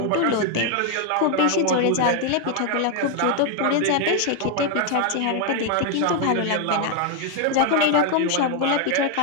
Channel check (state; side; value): different; both; correlation 0.01